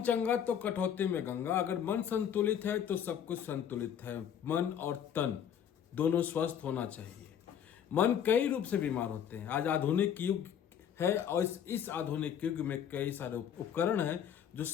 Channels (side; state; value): right; quieter; 8.9 dB